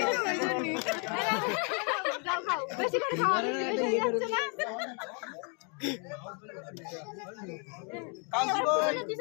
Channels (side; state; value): right; quieter; 37.3 dB